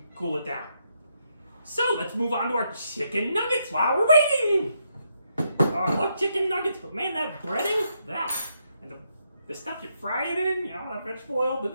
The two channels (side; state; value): both; inverted; correlation -0.78